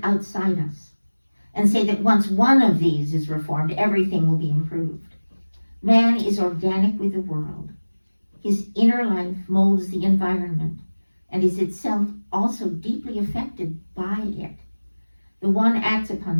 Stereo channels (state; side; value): inverted; both; correlation -1.00